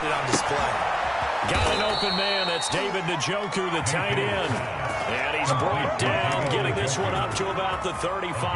it on display. Got an open man. That's David Njoku, the tight end. And he's brought down, getting this one up to about the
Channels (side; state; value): both; identical; correlation 1.00